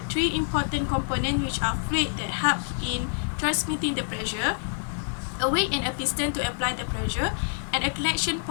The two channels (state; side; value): silent; right; 60 dB below the other